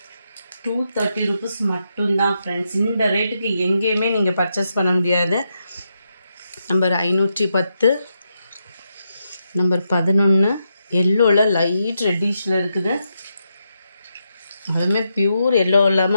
230 rupees மட்டும்தான் ஃப்ரெண்ட்ஸ். இந்த ரேட்டுக்கு எங்கேயுமே நீங்கள் பர்ச்சேஸ் பண்ண முடியாது. நம்பர் 510, நம்பர் 11, எல்லோவில் லைட் ரெட்டிஷில் இருக்குது. அதுவுமே பியூர் எல்லோ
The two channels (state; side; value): inverted; both; correlation -0.83